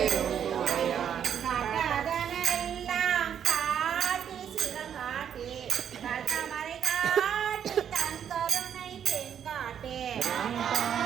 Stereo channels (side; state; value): left; quieter; 8.7 dB